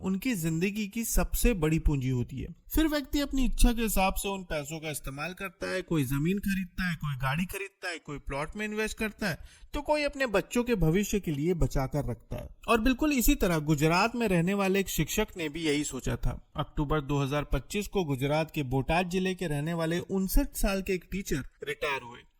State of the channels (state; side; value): identical; both; correlation 1.00